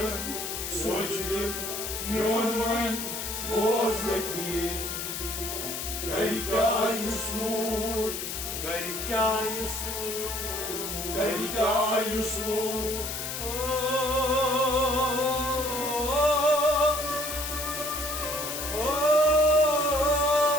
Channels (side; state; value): left; noise; hiss, 5 dB below the sound